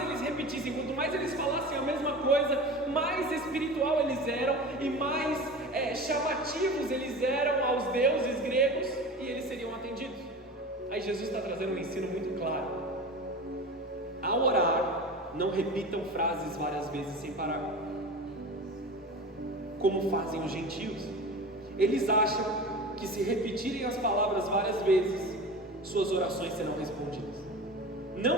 eles repetissem, quanto mais eles falassem a mesma coisa, mais espiritual eles eram e mais chamativos eles eram aos deuses gregos e eles seriam atendidos. Aí Jesus está trazendo um ensino muito claro. Ao orar, não repitam frases várias vezes sem parar, como fazem os gentios. Eles acham que se repetirem as palavras várias vezes, suas orações serão respondidas.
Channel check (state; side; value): normal; both; correlation 0.32